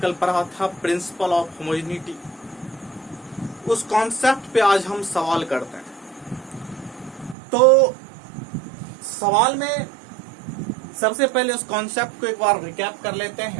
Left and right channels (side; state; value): left; drops out; at 7.4 s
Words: पढ़ा था, प्रिंसिपल ऑफ होमोजेनिटी। उस कॉन्सेप्ट पे आज हम सवाल करते हैं। तो सवाल में सबसे पहले उस कॉन्सेप्ट को एक बार रिकैप कर लेते